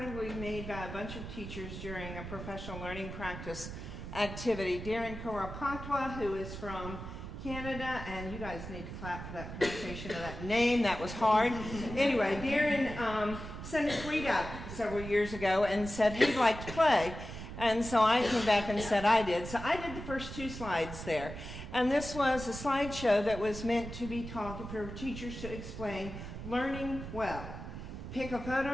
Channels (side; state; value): right; noise; rumble, 9 dB below the sound